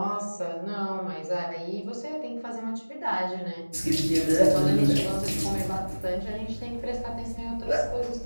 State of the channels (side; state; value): both; inverted; correlation -1.00